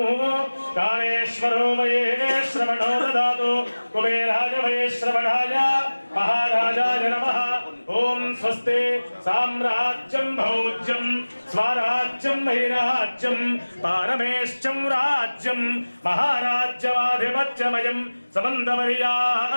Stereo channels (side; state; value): both; inverted; correlation -1.00